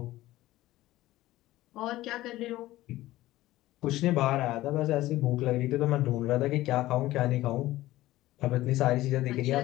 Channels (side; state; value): right; quieter; 16.4 dB